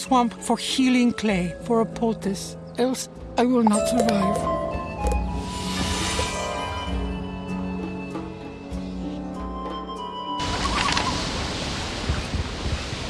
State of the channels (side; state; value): both; identical; correlation 1.00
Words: for healing clay for a poultice. Else, I will not survive.